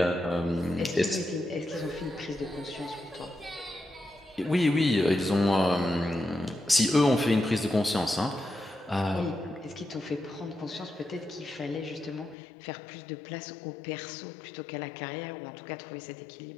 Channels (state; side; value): drops out; right; at 12.4 s